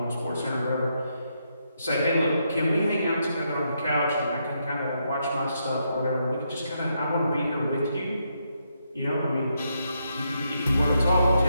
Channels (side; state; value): both; inverted; correlation -0.79